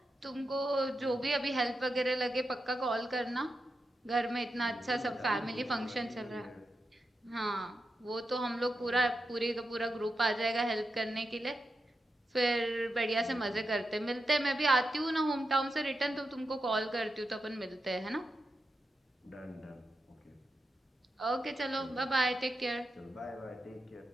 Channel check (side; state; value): both; normal; correlation 0.88